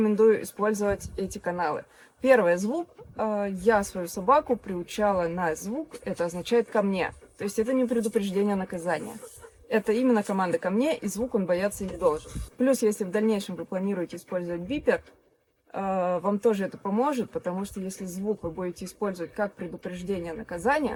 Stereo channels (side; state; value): both; identical; correlation 1.00